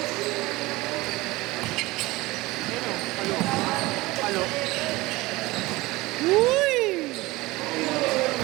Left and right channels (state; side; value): quieter; left; 20.8 dB